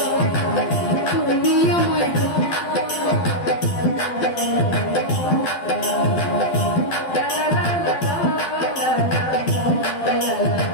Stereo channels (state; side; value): late; right; 12 ms